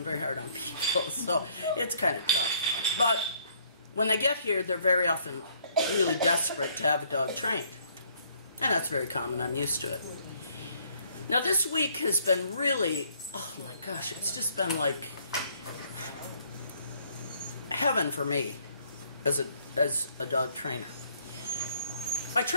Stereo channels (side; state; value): both; inverted; correlation -0.64